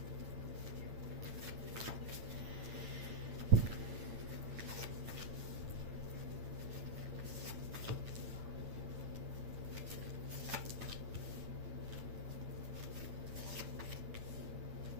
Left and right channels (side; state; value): left; late; 8.9 ms